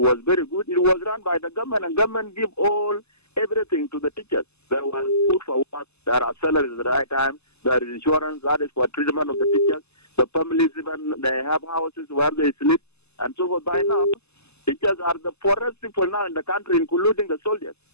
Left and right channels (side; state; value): right; late; 0.80 ms